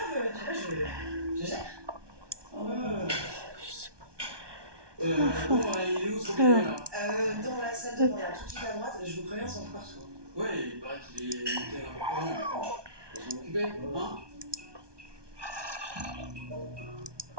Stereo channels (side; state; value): left; late; 1.2 ms